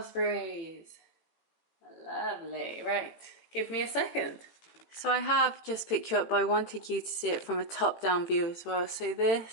Lovely. Right, give me a second. So I have just picked you up, but I wanted you to see it from a top-down view as well. So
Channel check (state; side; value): late; right; 18 ms